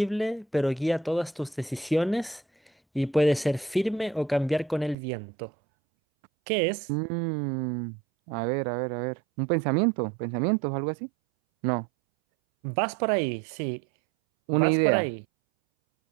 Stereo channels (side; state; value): left; drops out; at 5.0 s